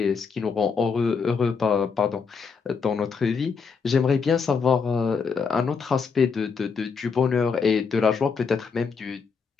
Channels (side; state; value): right; quieter; 5.5 dB